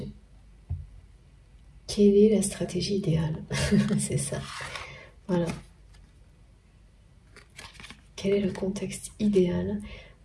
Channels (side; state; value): both; identical; correlation 1.00